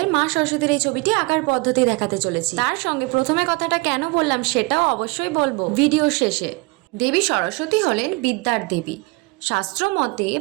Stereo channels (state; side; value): quieter; left; 26.2 dB